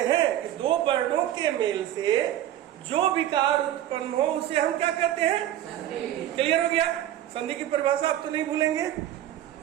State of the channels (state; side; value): quieter; left; 12.5 dB